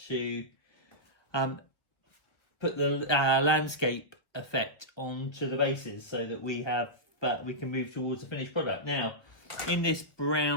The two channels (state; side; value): late; right; 1.3 ms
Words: put the landscape effect onto the bases so that we can move towards the finished product. Now, in this